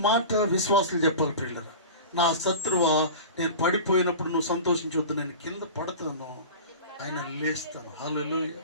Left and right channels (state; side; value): inverted; both; correlation -0.33